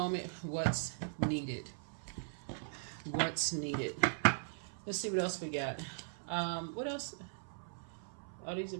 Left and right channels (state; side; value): silent; left; 52 dB below the other